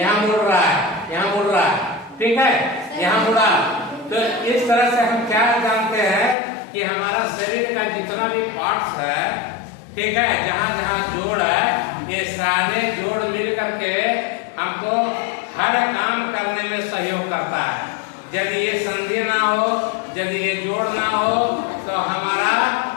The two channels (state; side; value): drops out; right; at 6.4 s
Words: यहाँ मुड़ रहा है, यहाँ मुड़ रहा है, ठीक है, यहाँ मुड़ा। तो इस तरह से हम क्या जानते हैं कि हमारा शरीर का जितना भी पार्ट्स है, ठीक है, जहाँ जहाँ जोड़ है, ये सारे जोड़ मिल करके हमको हर काम करने में सहयोग करता है। यदि ये संधि ना हो, यदि ये जोड़ ना हो, तो हमारा